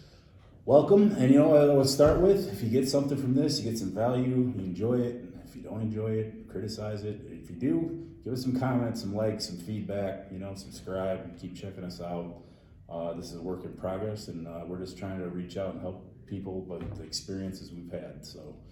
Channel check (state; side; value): identical; both; correlation 1.00